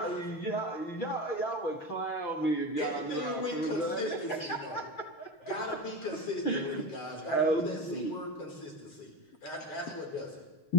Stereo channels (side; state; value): right; late; 6.5 ms